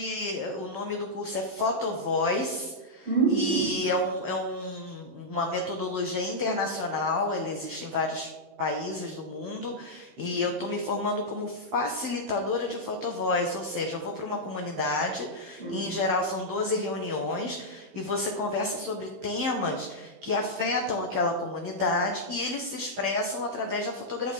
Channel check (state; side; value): late; left; 15 ms